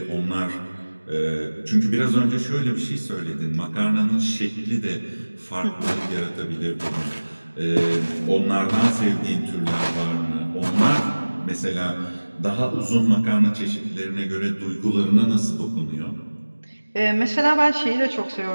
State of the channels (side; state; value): both; inverted; correlation -1.00